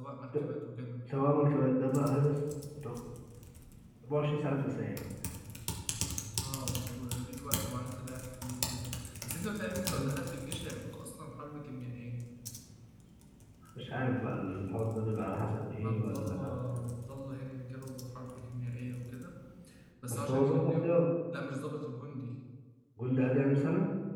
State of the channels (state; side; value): identical; both; correlation 1.00